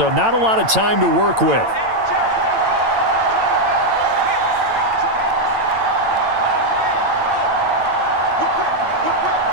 not a lot of time to work with.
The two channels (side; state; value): left; late; 8.9 ms